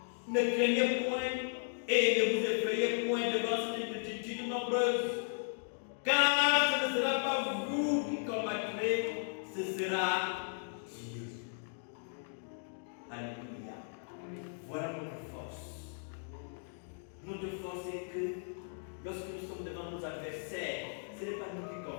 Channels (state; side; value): silent; right; digital silence